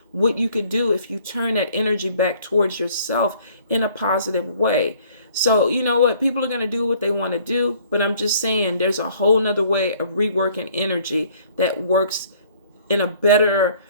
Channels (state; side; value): inverted; both; correlation -0.57